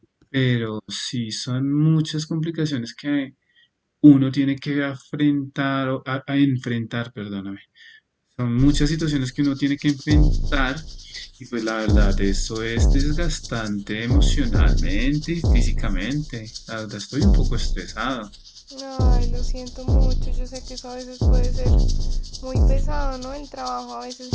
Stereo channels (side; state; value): both; identical; correlation 1.00